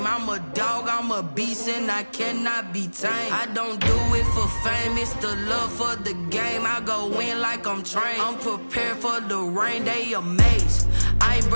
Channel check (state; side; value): inverted; both; correlation -1.00